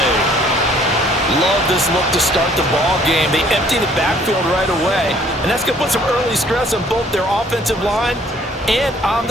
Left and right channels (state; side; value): normal; both; correlation 0.59